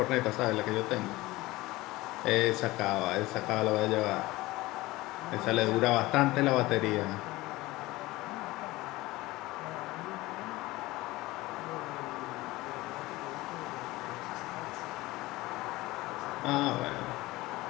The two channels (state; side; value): quieter; right; 19.4 dB